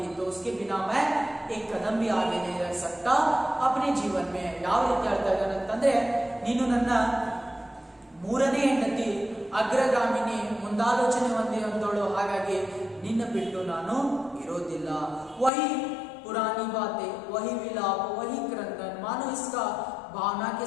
तो उसके बिना मैं एक कदम भी आगे नहीं रह सकता अपने जीवन में. ಯಾವ ರೀತಿ ಹೇಳ್ತಾ ಇದ್ದಾನೆ ಅಂತಂದ್ರೆ, ನೀನು ನನ್ನ 3ನೇ ಹೆಂಡತಿ, ಅಗ್ರಗಾಮಿನಿ, ಮುಂದಾಲೋಚನೆ ಹೊಂದಿರುವಂತವಳು, ಹಾಗಾಗಿ ನಿನ್ನ ಬಿಟ್ಟು ನಾನು ಇರೋದಿಲ್ಲ. वही पुरानी बातें, वही विलाप, वही क्रंदन, मानो इसका भावना के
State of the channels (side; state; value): right; drops out; at 15.5 s